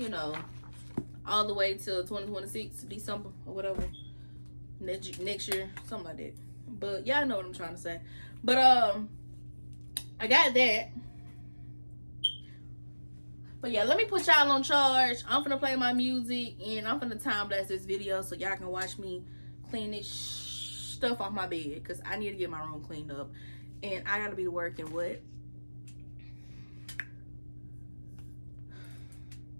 All the way till 2026, December or whatever. Next year, something like that. But y'all know what I'm trying to say. But I got that. But yeah, let me put y'all on charge. I'm finna play my music and I'm finna time blast this video so y'all can watch me clean this stuff off my bed because I need to get my room cleaned up. And I gotta be to work in what?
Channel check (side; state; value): both; inverted; correlation -1.00